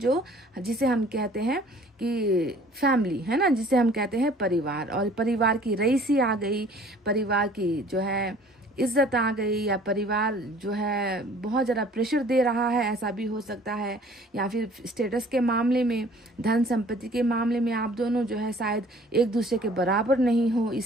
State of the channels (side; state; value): both; normal; correlation 0.52